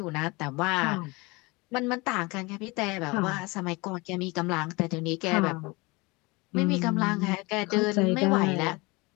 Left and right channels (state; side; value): quieter; right; 25.1 dB